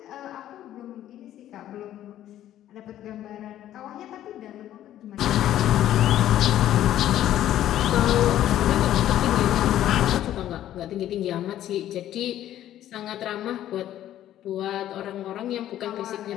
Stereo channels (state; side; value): quieter; right; 12.3 dB